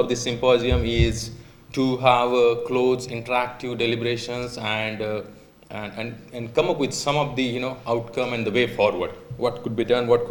this symposium is to have close interactive deliberations and come up with some of the outcome and the way forward. What could be done, what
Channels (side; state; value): both; identical; correlation 1.00